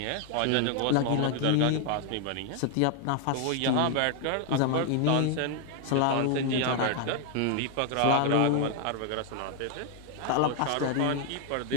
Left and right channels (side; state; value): both; different; correlation 0.00